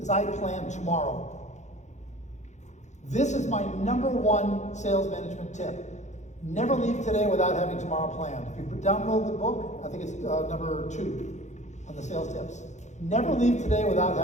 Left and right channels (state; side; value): late; right; 0.34 ms